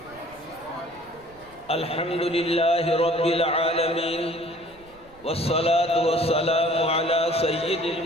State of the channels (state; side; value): noise; right; rumble, 26 dB below the sound